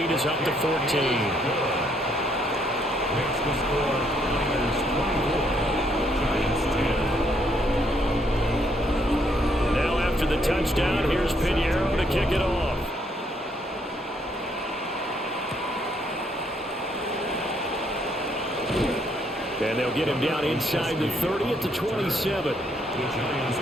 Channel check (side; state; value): both; normal; correlation 0.71